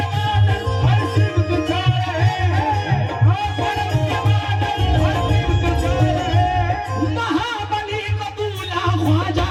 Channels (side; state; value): both; identical; correlation 1.00